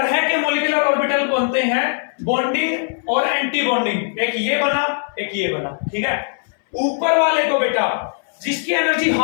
के मॉलिक्यूलर ऑर्बिटल बनते हैं, बॉन्डिंग और एंटी बॉन्डिंग। एक ये बना, एक ये बना, ठीक है। ऊपर वाले को बेटा जिसकी एनर्जी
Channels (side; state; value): right; silent; 63 dB below the other